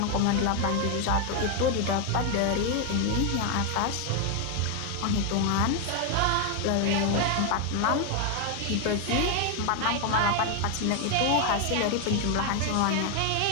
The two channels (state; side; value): different; both; correlation 0.01